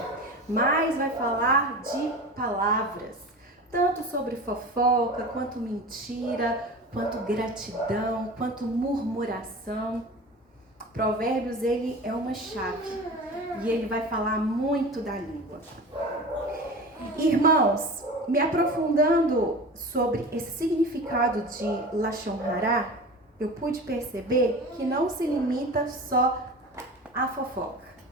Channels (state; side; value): normal; both; correlation 0.34